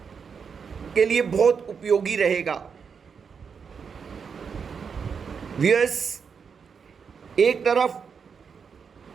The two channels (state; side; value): quieter; left; 6.2 dB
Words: के लिए बहुत उपयोगी रहेगा। व्यूअर्स, एक तरफ